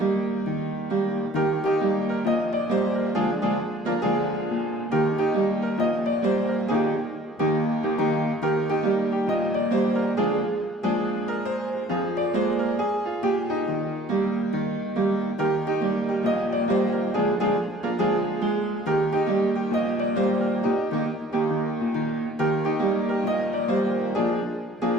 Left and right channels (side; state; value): both; normal; correlation 0.54